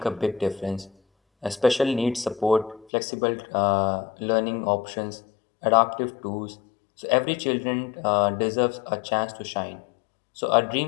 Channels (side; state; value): right; drops out; at 2.9 s